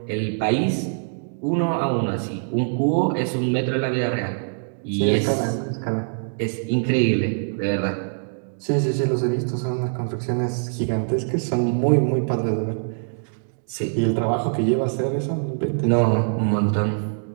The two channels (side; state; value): left; silent; digital silence